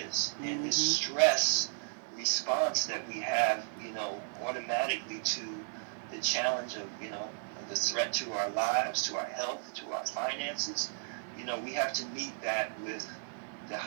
And this stress response that we have, automatically to the challenge of, the threat to our lives, to our health, to our finances, we have to meet that with the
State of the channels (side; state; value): left; silent; 55 dB below the other